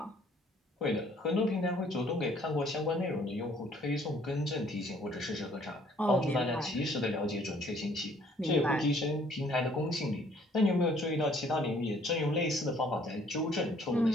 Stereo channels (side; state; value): both; normal; correlation 0.60